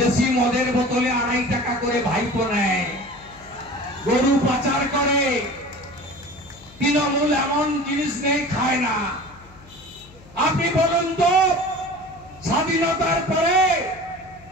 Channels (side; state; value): left; noise; hum, 23 dB below the sound